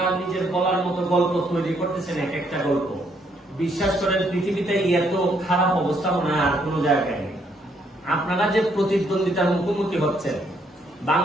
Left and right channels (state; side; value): normal; both; correlation 0.71